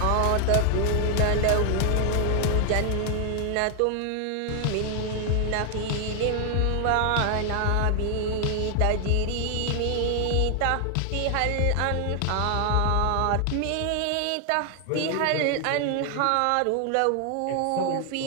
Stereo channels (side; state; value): both; different; correlation 0.00